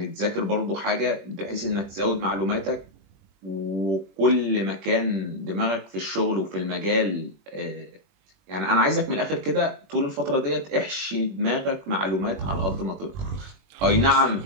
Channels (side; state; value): left; late; 21 ms